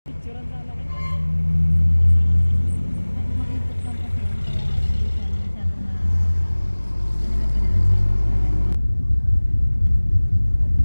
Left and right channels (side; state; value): both; inverted; correlation -1.00